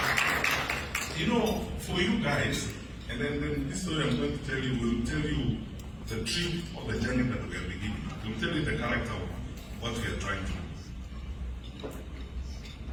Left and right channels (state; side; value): identical; both; correlation 1.00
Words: For you guys, and then this story I'm going to tell you will tell you the truth of the journey that we are beginning. It will tell you the character of what we are trying to do.